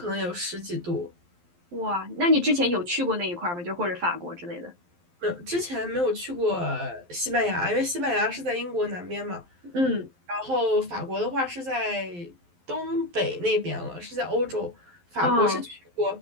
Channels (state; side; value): late; left; 11 ms